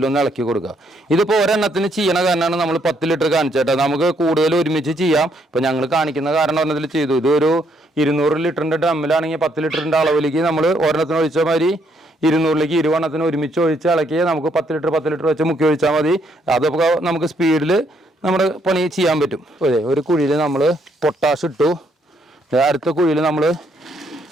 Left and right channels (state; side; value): normal; both; correlation 0.71